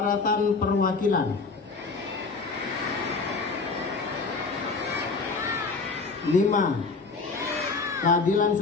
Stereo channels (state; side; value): quieter; right; 4.2 dB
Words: perwakilan. 5, keadilan